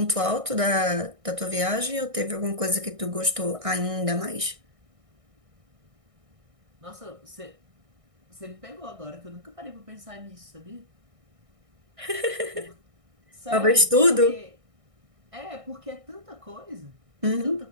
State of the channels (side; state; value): left; late; 1.6 ms